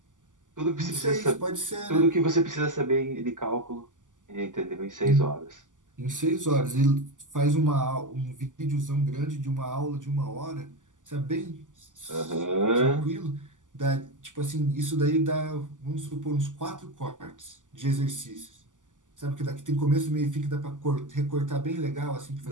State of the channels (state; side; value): late; left; 0.87 ms